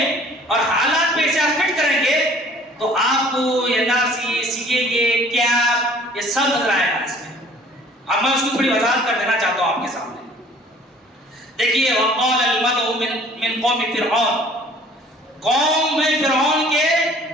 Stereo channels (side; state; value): both; normal; correlation 0.52